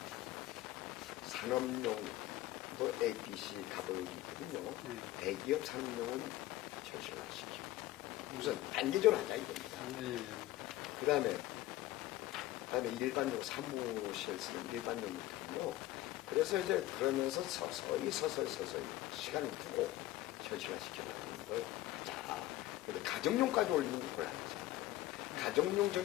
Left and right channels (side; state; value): right; quieter; 15.5 dB